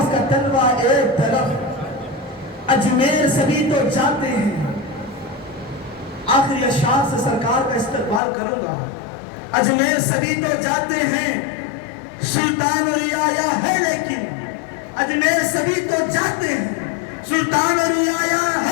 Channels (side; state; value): right; drops out; at 8.2 s